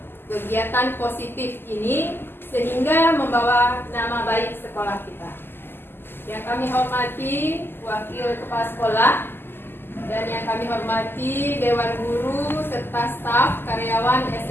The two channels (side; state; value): right; late; 0.10 ms